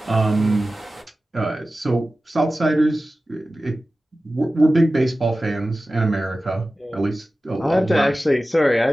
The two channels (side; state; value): both; normal; correlation 0.95